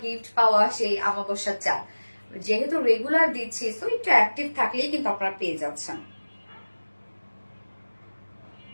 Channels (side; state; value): both; inverted; correlation -1.00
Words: গিফট পাওয়া সেই আমাবস্যার চাল। যেহেতু রেগুলার দিচ্ছি, সো একটু অ্যাক্টিভ থাকলেই কিন্তু আপনারা পেয়ে যাচ্ছেন।